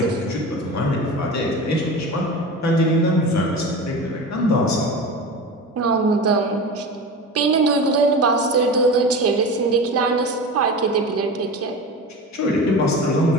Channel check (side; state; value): both; normal; correlation 0.30